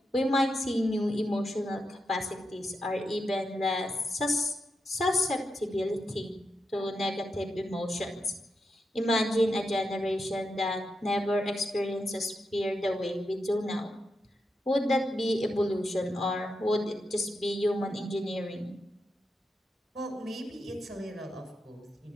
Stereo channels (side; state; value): both; normal; correlation 0.86